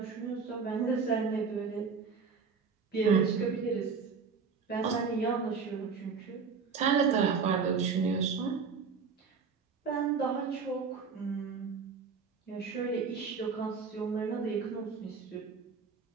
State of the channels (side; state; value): left; quieter; 5.4 dB